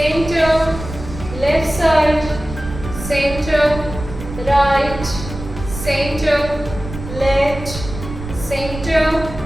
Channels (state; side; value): noise; right; rumble, 10 dB below the sound